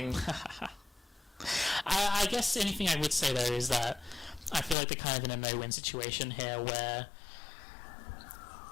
I guess anything I would say though is that I feel like they're kind of in a no-win situation here, where,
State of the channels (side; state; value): right; drops out; at 4.8 s